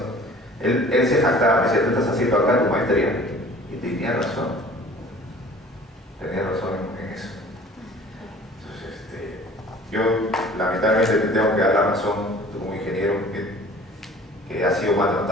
él se jactaba, me decía, tú estás haciendo acá tu maestría. Y tenía razón. Tenía razón en eso. Entonces, yo lamentablemente te tengo que dar la razón, tú como ingeniero que ha sido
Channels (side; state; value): both; normal; correlation 0.48